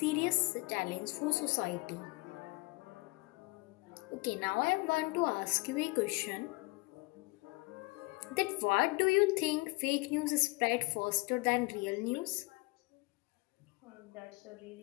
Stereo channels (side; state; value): right; quieter; 25.8 dB